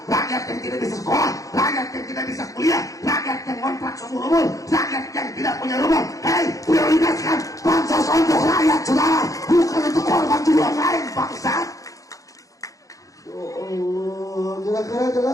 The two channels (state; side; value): late; right; 0.16 ms